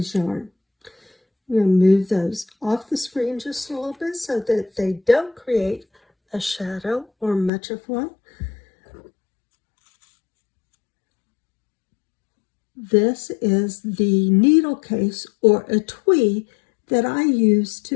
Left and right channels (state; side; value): drops out; right; at 7.5 s